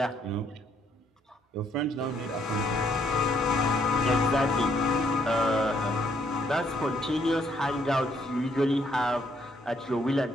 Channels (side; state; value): both; normal; correlation 0.70